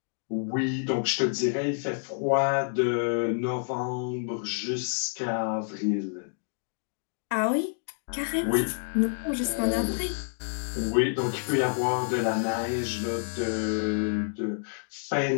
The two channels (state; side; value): silent; right; digital silence